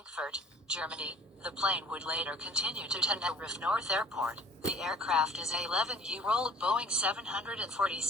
Germany. The plane would later continue to Tenerife North Airport. The aircraft is a 11-year-old Boeing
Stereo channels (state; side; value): normal; both; correlation 0.49